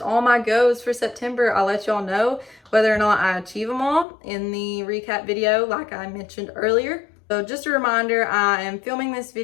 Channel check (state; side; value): drops out; right; at 4.0 s